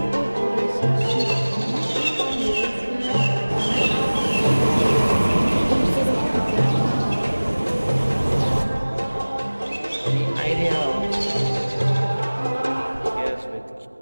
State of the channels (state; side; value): inverted; both; correlation -1.00